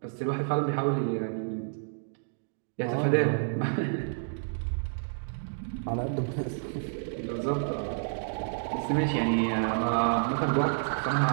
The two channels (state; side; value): silent; left; digital silence